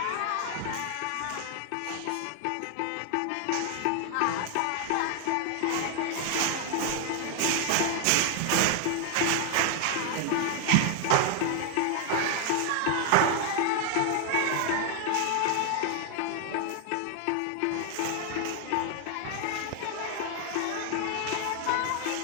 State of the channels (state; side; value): different; both; correlation 0.00